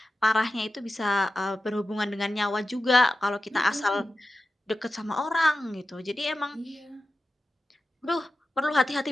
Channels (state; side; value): normal; both; correlation 0.93